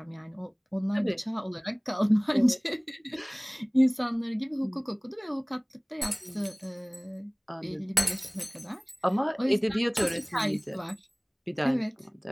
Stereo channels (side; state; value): both; identical; correlation 1.00